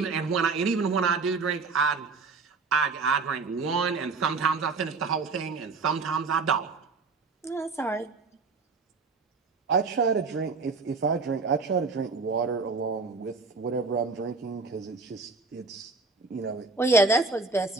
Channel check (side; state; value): left; quieter; 4.2 dB